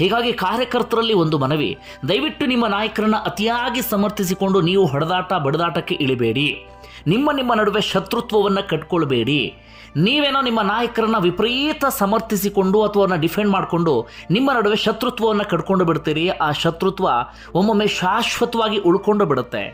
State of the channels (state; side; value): identical; both; correlation 1.00